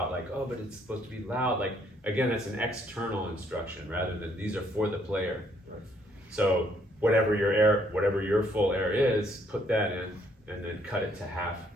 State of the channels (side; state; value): both; normal; correlation 0.68